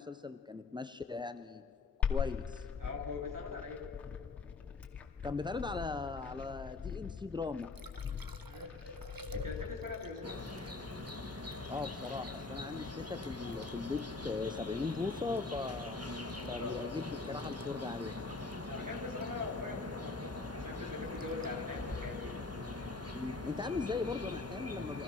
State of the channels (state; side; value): quieter; right; 3.8 dB